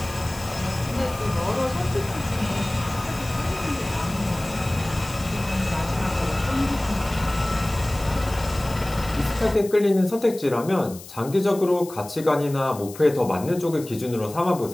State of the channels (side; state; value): left; noise; hiss, 17 dB below the sound